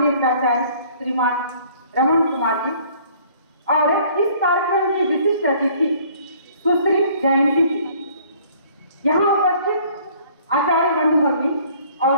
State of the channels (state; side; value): inverted; both; correlation -0.56